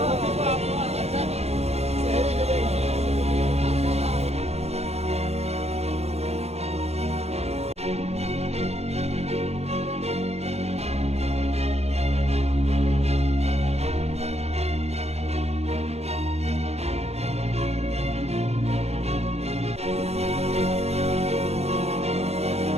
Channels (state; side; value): late; left; 0.31 ms